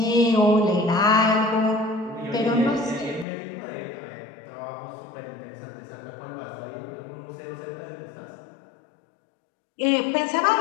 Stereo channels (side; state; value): right; drops out; at 3.2 s